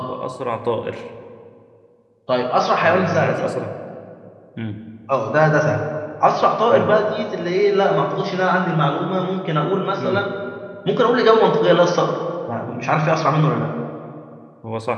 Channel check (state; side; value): identical; both; correlation 1.00